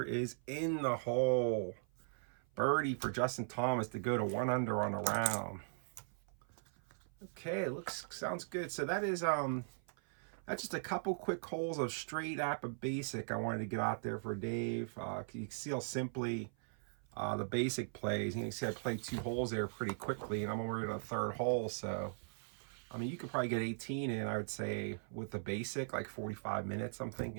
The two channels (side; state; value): left; silent; 51 dB below the other